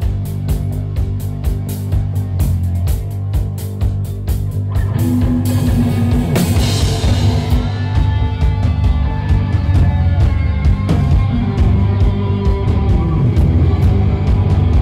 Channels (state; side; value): identical; both; correlation 1.00